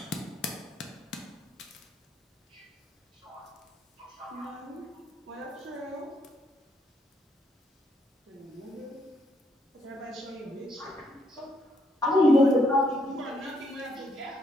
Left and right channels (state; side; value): normal; both; correlation 0.73